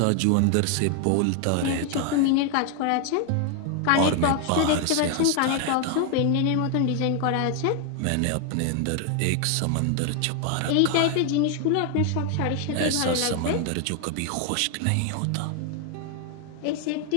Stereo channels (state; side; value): different; both; correlation 0.00